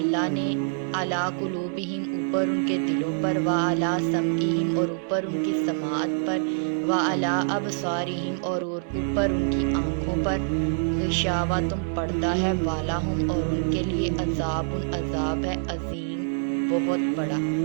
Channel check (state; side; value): silent; left; digital silence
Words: ने अला कुलूबिहिम ऊपर उनके दिलों पर व अला समईहिम और ऊपर उनकी समाअत पर व अला अबसारिहिम और ऊपर उनकी आँखों पर गिशावा तुम पर्दा है वाला हूँ और उनके लिए अजाबुन अजाब है अजीम बहुत बड़ा।